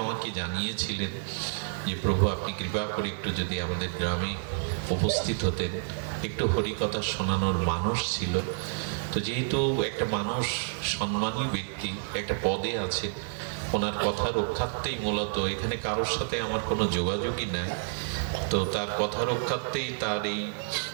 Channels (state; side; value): silent; left; 58 dB below the other